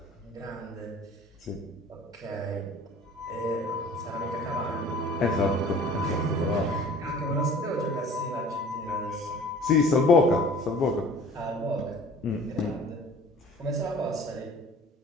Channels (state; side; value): normal; both; correlation 0.47